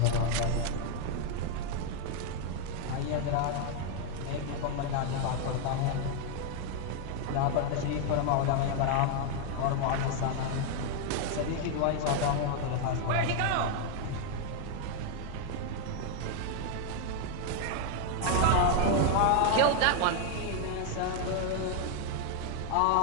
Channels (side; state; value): both; different; correlation 0.00